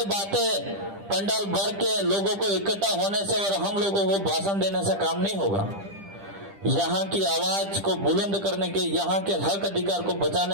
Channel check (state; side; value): late; left; 10 ms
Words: बातें पंडाल भर के लोगों को इकट्ठा होने से और हम लोगों को भाषण देने से काम नहीं होगा। यहाँ की आवाज को बुलंद करने के, यहाँ के हक अधिकार को